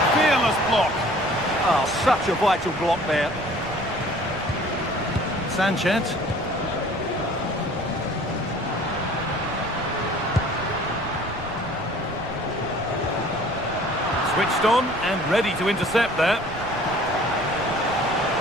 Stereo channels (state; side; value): noise; right; rumble, 14 dB below the sound